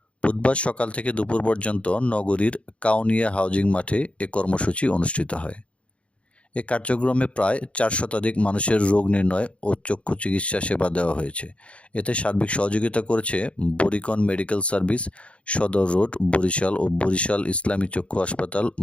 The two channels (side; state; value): right; late; 0.061 ms